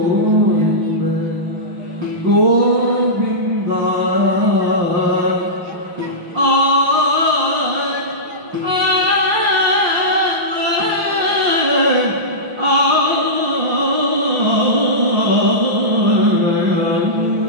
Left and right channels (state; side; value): late; left; 5.7 ms